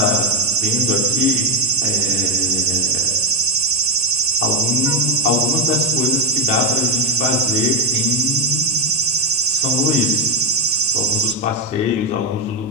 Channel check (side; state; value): both; normal; correlation 0.03